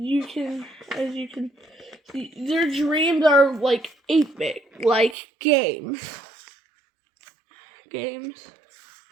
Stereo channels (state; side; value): drops out; left; at 5.2 s